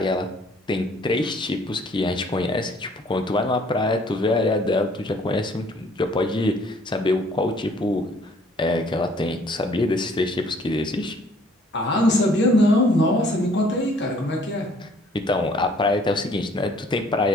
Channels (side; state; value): both; normal; correlation 0.59